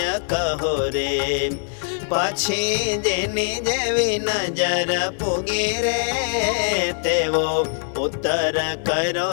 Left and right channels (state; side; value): silent; right; 64 dB below the other